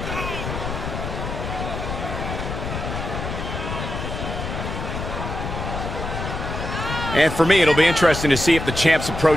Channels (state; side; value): noise; left; rumble, 5 dB below the sound